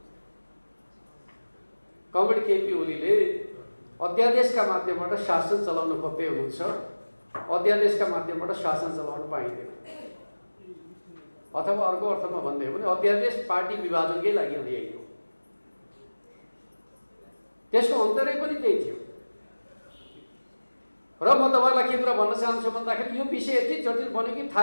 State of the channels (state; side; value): inverted; both; correlation -1.00